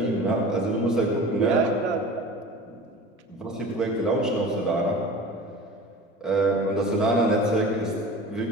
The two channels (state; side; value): normal; both; correlation 0.38